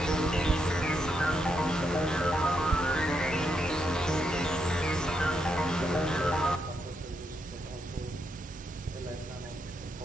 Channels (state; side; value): normal; both; correlation 0.81